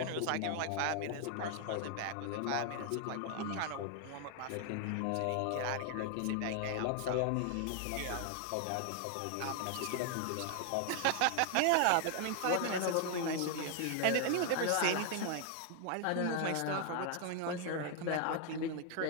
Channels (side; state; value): both; different; correlation 0.00